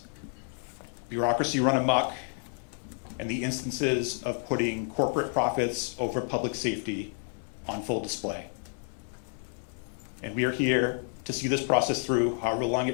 bureaucracy run amok, and the instances of putting corporate profits over public safety on full display. And we are here to see this process through, however long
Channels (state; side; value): silent; right; 55 dB below the other